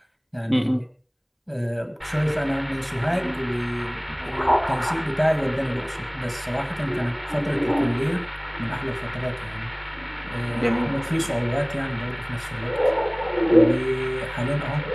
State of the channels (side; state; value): both; identical; correlation 1.00